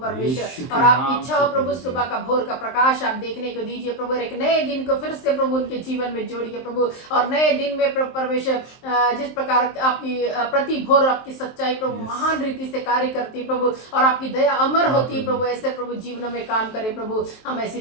परमेश्वर, के और नाम आपकी इच्छा से हो प्रभु प्रभु जी। सुबह का भोर का प्रकाश आप देखने को दीजिए प्रभु, और एक नए दिन को फिर से प्रभु उनके जीवन में जोड़िए प्रभु, और नए दिन में प्रभु परमेश्वर जिस प्रकार आपकी प्रति भोर आपकी सच्चाई प्रभु Yes. महान रीति से कार्य करती है प्रभु, और आपकी दया अमर हाँ, होती है प्रभु। प्रभु, ऐसे प्रभु जीवनों में काम करे प्रभु, हम ऐसी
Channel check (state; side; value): late; right; 23 ms